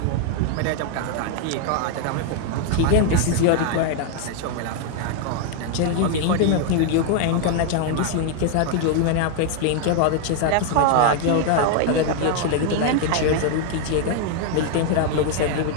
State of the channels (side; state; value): both; different; correlation 0.00